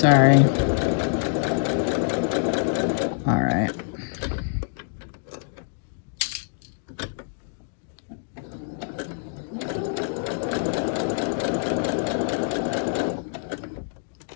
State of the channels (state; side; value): silent; right; digital silence